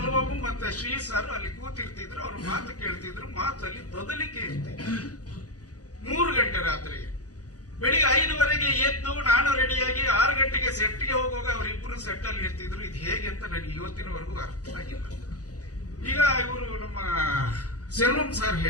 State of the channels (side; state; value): right; late; 0.67 ms